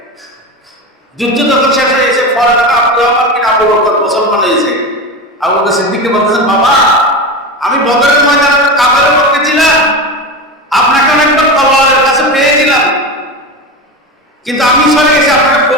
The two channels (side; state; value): both; normal; correlation 0.22